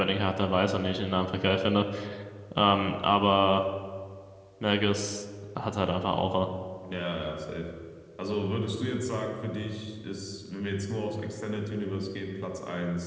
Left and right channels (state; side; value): identical; both; correlation 1.00